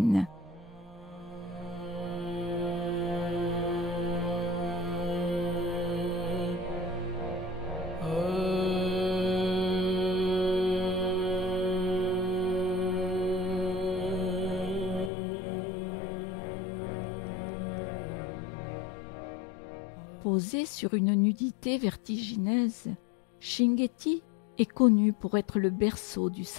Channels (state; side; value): drops out; right; at 15.1 s